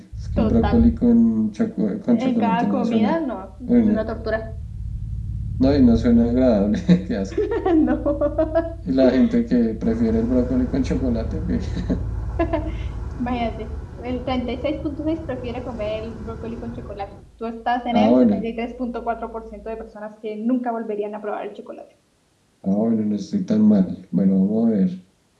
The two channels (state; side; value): identical; both; correlation 1.00